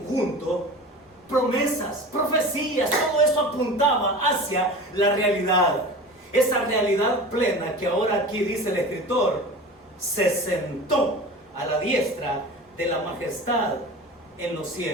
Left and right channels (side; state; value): both; normal; correlation 0.34